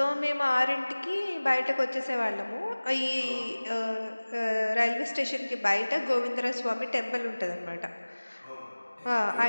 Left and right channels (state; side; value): inverted; both; correlation -1.00